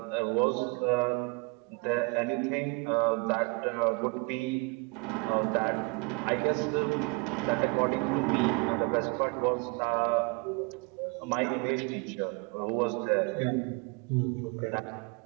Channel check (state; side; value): quieter; left; 30.2 dB